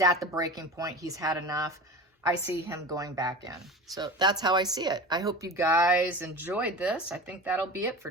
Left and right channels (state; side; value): normal; both; correlation 0.33